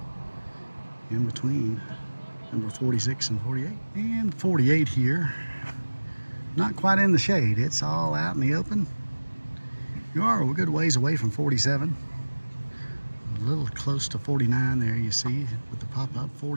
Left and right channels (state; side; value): inverted; both; correlation -1.00